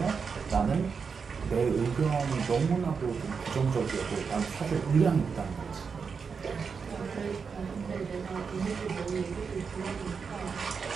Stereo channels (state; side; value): quieter; left; 5.7 dB